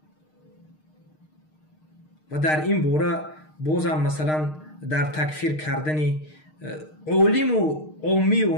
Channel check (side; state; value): right; late; 6.5 ms